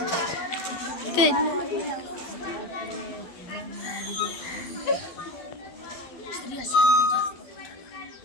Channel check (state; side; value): late; right; 12 ms